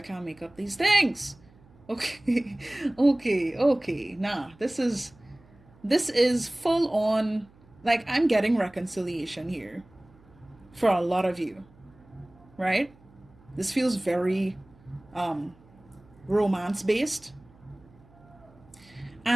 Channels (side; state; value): right; noise; hum, 27 dB below the sound